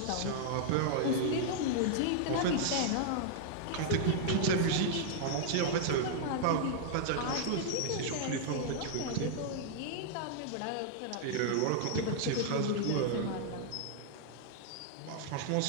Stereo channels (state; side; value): different; both; correlation -0.01